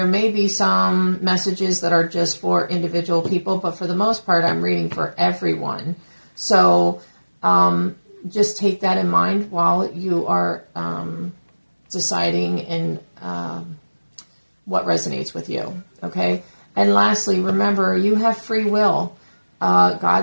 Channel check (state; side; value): inverted; both; correlation -1.00